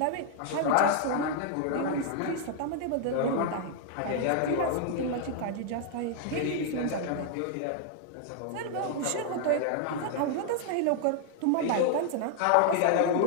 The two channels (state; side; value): different; both; correlation 0.00